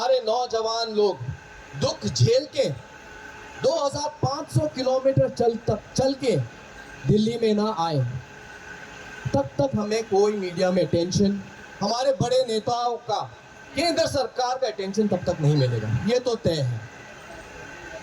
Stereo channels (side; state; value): both; identical; correlation 1.00